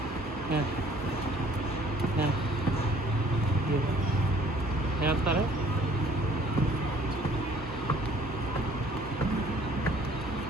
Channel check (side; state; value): both; normal; correlation 0.57